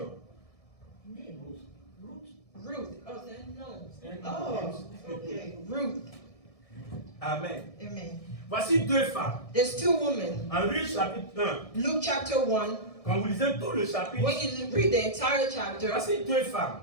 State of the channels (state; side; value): late; right; 1.6 ms